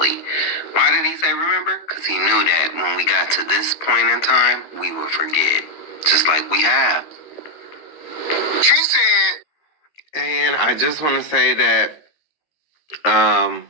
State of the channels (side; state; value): right; late; 13 ms